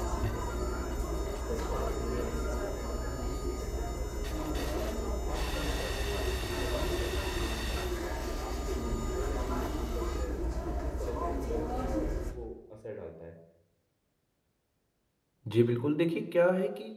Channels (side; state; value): both; identical; correlation 1.00